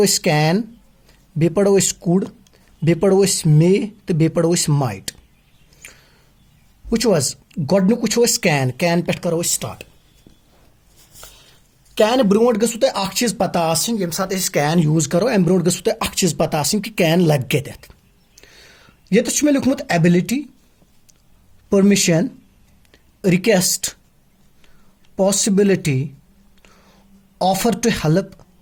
अस कैन, बे पढ़ो अस कुड, बे पढ़ो अस मे तो बे पढ़ो अस माइट। वो गोडनुक वो कैन पे करो स्टार्ट। कैन ब्रोट गु तुम अख चीज पता आसन यम साथ कैन यूज करो अम ब्रोट गु तुम अख चीज पता आसन कि कैन लग कत ये मे लिखमुत ability, permission, request, possibility, offer to help,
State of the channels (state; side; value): identical; both; correlation 1.00